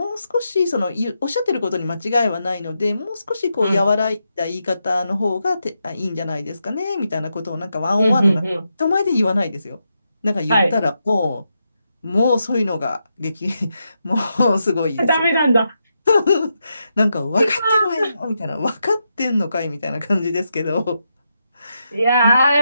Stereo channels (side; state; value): both; inverted; correlation -0.85